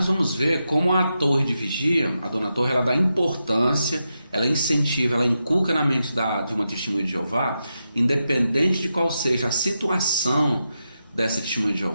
vamos ver como a torre de vigia, a dona Torre, ela dá importância, ela incentiva, ela inculca na mente de uma testemunha de Jeová, independente de qual seja a situação dessa testemunha de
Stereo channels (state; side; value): inverted; both; correlation -0.87